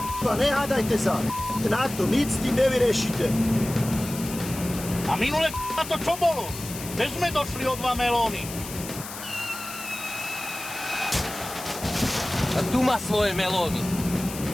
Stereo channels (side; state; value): left; noise; hiss, 11 dB below the sound